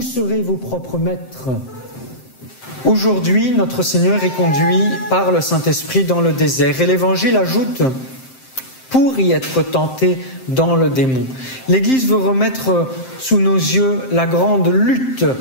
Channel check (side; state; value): right; late; 7.7 ms